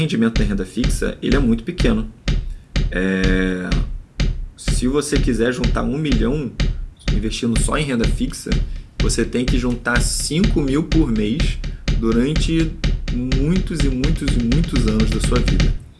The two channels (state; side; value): identical; both; correlation 1.00